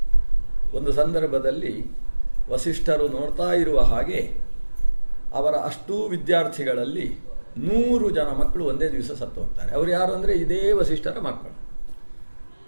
ಒಂದು ಸಂದರ್ಭದಲ್ಲಿ ವಸಿಷ್ಠರು ನೋಡ್ತಾ ಇರುವ ಹಾಗೆ ಅವರ ಅಷ್ಟೂ ವಿದ್ಯಾರ್ಥಿಗಳಲ್ಲಿ 100 ಜನ ಮಕ್ಕಳು ಒಂದೇ ದಿವಸ ಸತ್ತು ಹೋಗ್ತಾರೆ. ಅವರು ಯಾರು ಅಂದರೆ ಇದೇ ವಸಿಷ್ಠರ ಮಕ್ಕಳು.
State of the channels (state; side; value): inverted; both; correlation -1.00